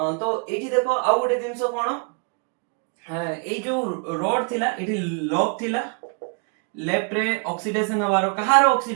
एठी देखो आउ गोटे जिंस कोन ए जो रॉड थिला एठी लॉक थिला लेफ्ट रे ऑक्सीडेशन हवारो कहारो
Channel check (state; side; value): quieter; left; 39.1 dB